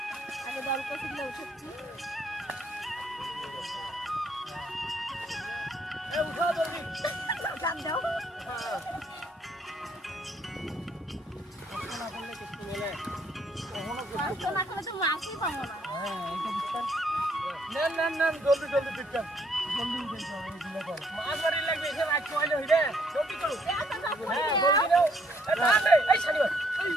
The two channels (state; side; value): normal; both; correlation 0.68